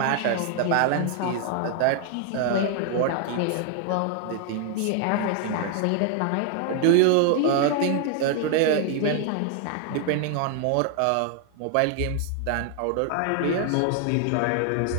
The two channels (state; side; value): different; both; correlation 0.00